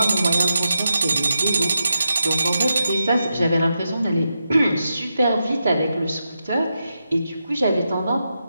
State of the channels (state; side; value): inverted; both; correlation -0.87